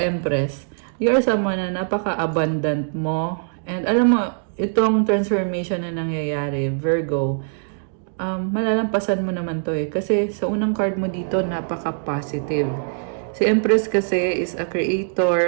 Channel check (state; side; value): silent; left; digital silence